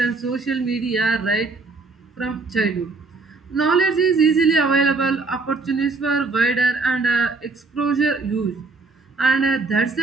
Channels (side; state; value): left; quieter; 4.0 dB